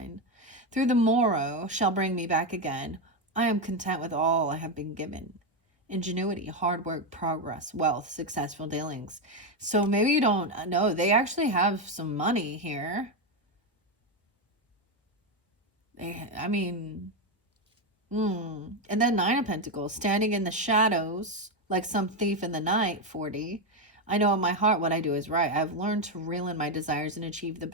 Through the morrow shall bring me back again. I am content with all I have been given. Ingenuity, hard work, progress, wealth, successful dealings. So maybe you don't know. They actually have some money here. I mean, and then Nine of Pentacles, standing in the shadows like some thief in the night. 40. I know in my heart what I do is right. I've learned to reel in my desires and achieve the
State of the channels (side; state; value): both; normal; correlation 0.08